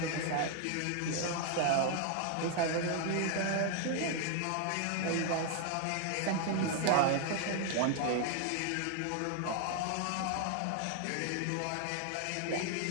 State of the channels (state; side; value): different; both; correlation 0.00